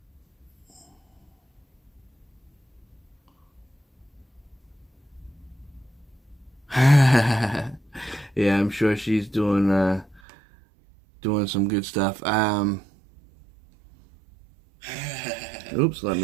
yeah, I'm sure she's doing some good stuff. Oops, let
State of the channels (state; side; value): drops out; left; at 10.2 s